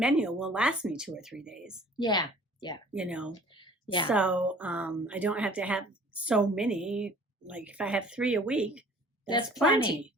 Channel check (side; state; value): both; normal; correlation 0.50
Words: will last me 2 or 3 days. Yeah. Yeah. Yeah. So I don't have to have so many. Like if I have 3 a week, that's plenty.